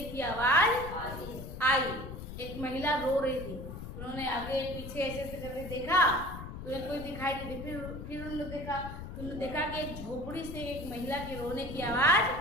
की आवाज आई। एक महिला रो रही थी, उन्होंने आगे पीछे ऐसे ऐसे करके देखा, तो कोई दिखाई नहीं दी। फिर उन्होंने देखा कि एक झोपड़ी से एक महिला के रोने की आवाज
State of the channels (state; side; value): noise; left; rumble, 9 dB below the sound